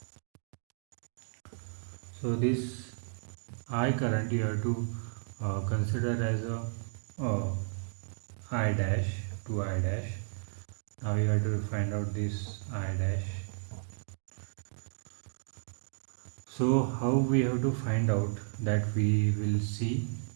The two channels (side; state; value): left; silent; digital silence